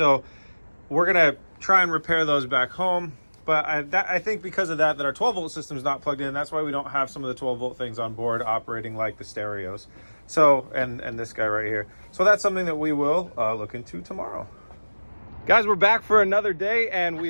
we're gonna try and repair those back home. But I think because of that our 12-volt system is not plugged in. That's why we don't have some of the 12-volt things on board operating like the stereos. So, and this guy right here. So that's something that we will look into tomorrow. Guys, we're back for another day, and we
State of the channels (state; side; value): inverted; both; correlation -1.00